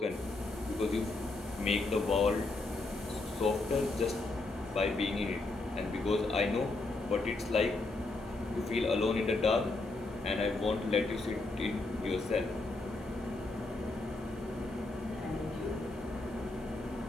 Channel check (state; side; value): quieter; right; 3.1 dB